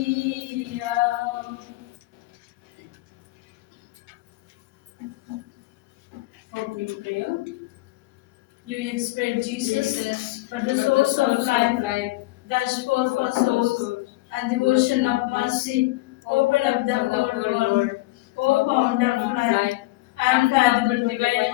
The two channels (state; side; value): quieter; right; 19.9 dB